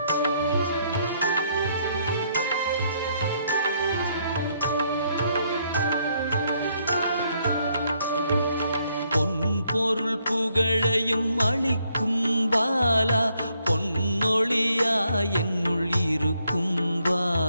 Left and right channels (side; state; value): both; inverted; correlation -0.72